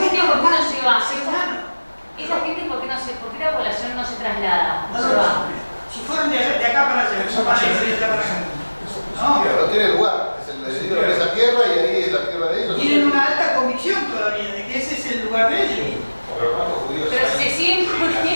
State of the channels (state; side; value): inverted; both; correlation -1.00